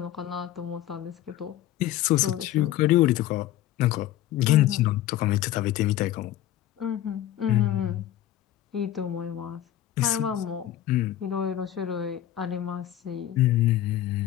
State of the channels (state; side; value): quieter; right; 12.8 dB